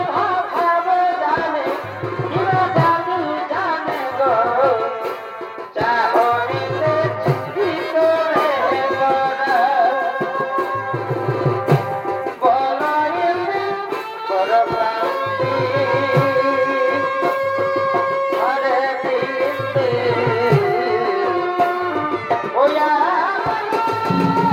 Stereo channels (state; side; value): identical; both; correlation 1.00